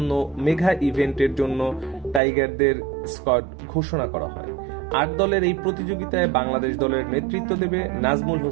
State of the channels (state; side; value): drops out; left; at 2.2 s